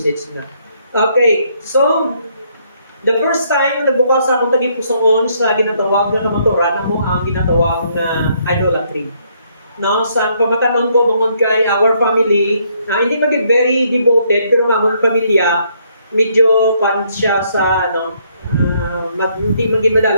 na. Okay, so, the first time nagbukas akong tagipusoon sa ginatawag na kamaturan mo ang ginatawag na idolatry. No, sa pamatanon ko bungod kay our family, hindi maging very devoted pero ang among pamilya medyo pan siya sa hindi maging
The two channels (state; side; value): inverted; both; correlation -0.70